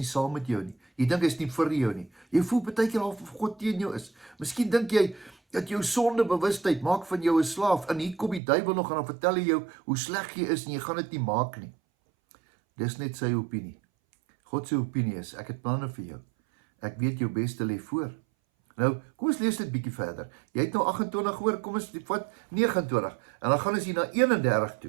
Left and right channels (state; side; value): drops out; left; at 8.4 s